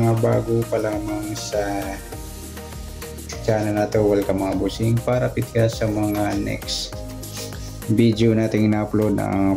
bago pa lamang sa channel na to. Welcome mga busing. Para pitka sa mga next video nating ina-upload,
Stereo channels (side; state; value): both; identical; correlation 1.00